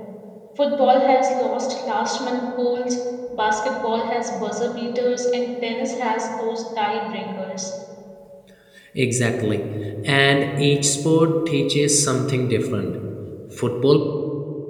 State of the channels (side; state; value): both; identical; correlation 1.00